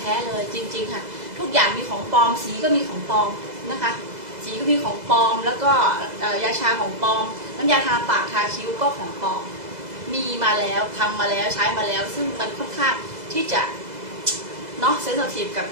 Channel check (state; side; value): late; left; 2.0 ms